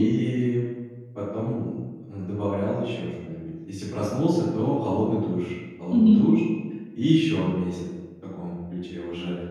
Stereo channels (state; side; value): identical; both; correlation 1.00